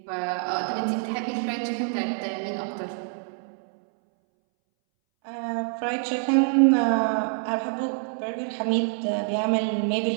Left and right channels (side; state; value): left; silent; 61 dB below the other